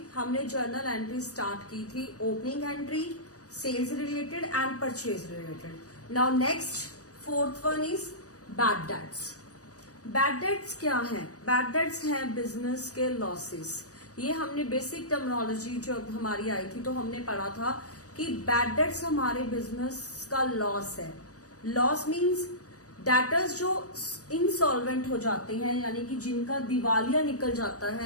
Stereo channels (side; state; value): right; late; 0.66 ms